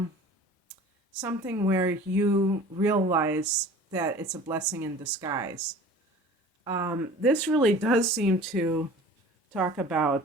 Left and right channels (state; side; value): normal; both; correlation 0.43